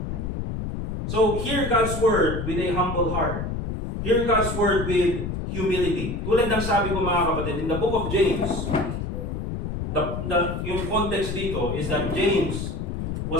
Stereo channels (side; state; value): left; noise; rumble, 4 dB below the sound